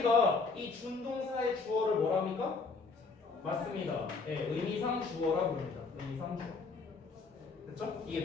이 준동사의 주어를 뭐라 합니까? 맞습니다. 네, 의미상 주어라 부릅니다. 의미상 주어. 됐죠?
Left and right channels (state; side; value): quieter; right; 4.3 dB